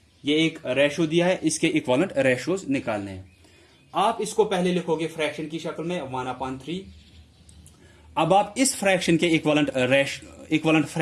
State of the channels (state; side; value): identical; both; correlation 1.00